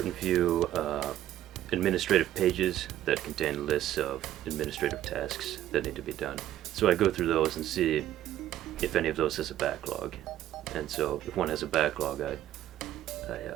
few administrative pages that contain lists of administrative tasks that need to be done. So I go through those and see if any of those has a backlog. And so if one has a backlog, I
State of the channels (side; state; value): left; quieter; 12.8 dB